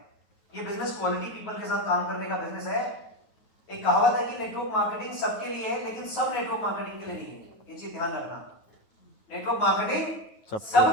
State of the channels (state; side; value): late; right; 9.3 ms